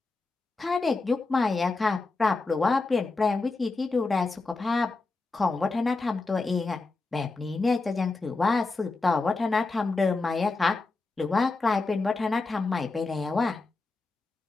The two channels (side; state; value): right; quieter; 3.6 dB